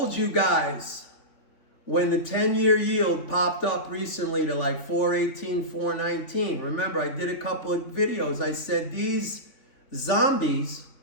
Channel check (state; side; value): late; right; 3.4 ms